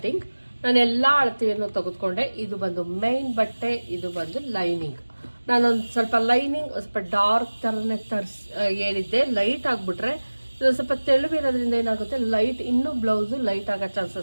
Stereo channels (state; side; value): inverted; both; correlation -1.00